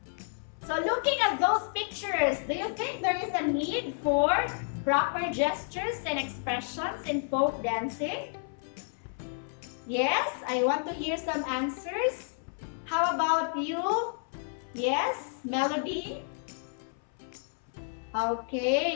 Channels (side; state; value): right; silent; 57 dB below the other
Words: So looking at those pictures, do you think there is a need for proper gestures and expressions in folk dancing? Yes, I want to hear some answers. How about you? Yes, Melody?